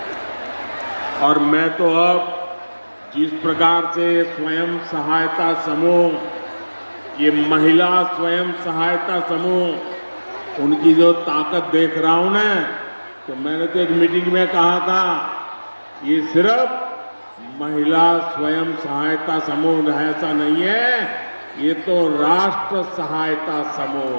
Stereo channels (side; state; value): both; inverted; correlation -1.00